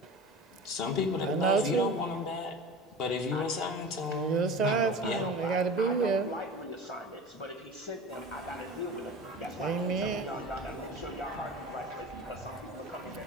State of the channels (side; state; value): both; normal; correlation 0.35